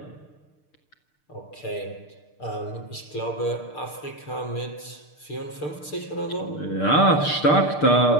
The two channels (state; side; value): late; right; 6.7 ms